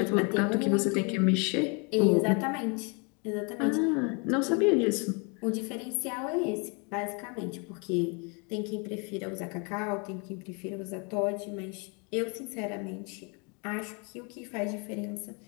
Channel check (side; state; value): right; quieter; 33.8 dB